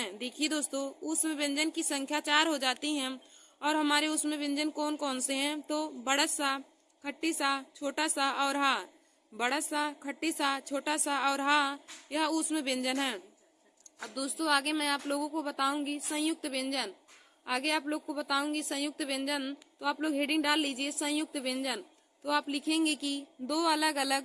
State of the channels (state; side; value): identical; both; correlation 1.00